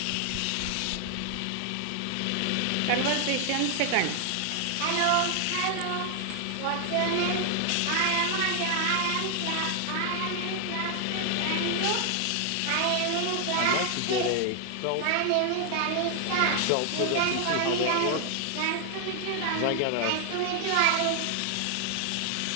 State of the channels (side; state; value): both; different; correlation 0.00